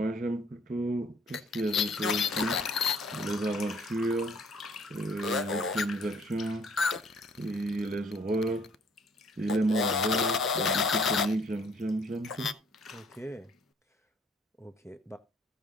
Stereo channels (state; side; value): normal; both; correlation 0.59